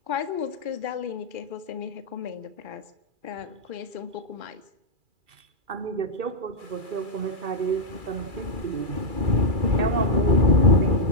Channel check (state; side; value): late; left; 2.4 ms